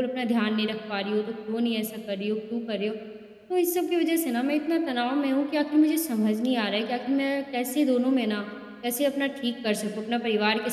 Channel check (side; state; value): both; identical; correlation 1.00